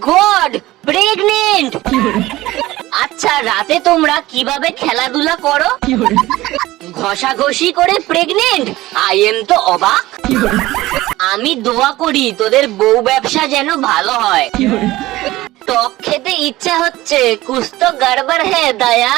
গড, প্রেগনেন্ট! আচ্ছা রাতে তোমরা কিভাবে খেলাধুলা করো? ঘষাঘষি করে প্রেগনেন্ট? আই এম তো অবাক। আমি দোয়া করি তোদের বউ ব্যবসা যেন ভালো হয়। টক খেতে ইচ্ছা হচ্ছে, কুছ তো গড়বড় হে দয়া।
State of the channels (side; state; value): left; quieter; 17.6 dB